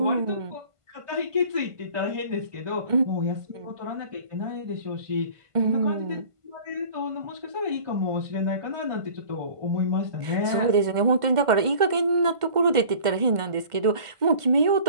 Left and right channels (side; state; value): left; late; 1.5 ms